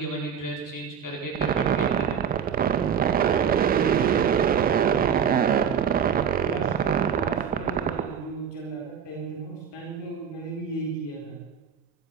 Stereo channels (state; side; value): quieter; left; 7.6 dB